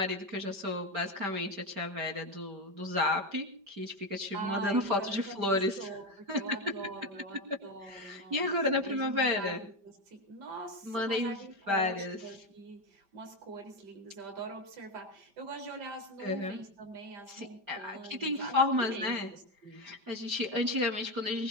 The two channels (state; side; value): late; left; 5.1 ms